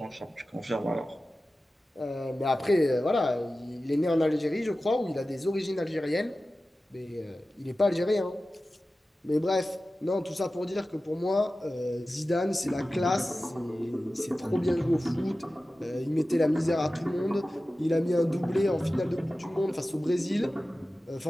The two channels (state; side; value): normal; both; correlation 0.95